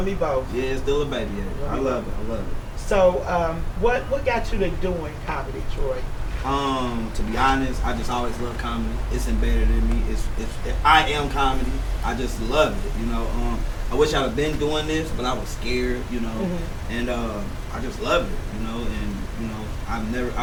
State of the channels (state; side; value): identical; both; correlation 1.00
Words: me both. Yeah, still a baby. Yeah. I love it. I love it. So, what got you to doing comedy, Troy? To be honest, I just always love comedy. It's embedded in me. I am comedy. I just love it. You know. I wish I'd have been doing this, but I was scared. You know. Mm-hmm. And I just love it. You know. And you know,